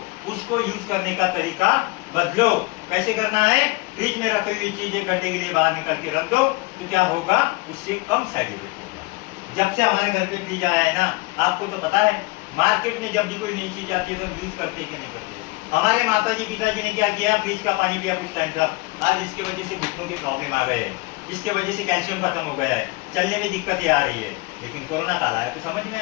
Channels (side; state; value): right; quieter; 23.8 dB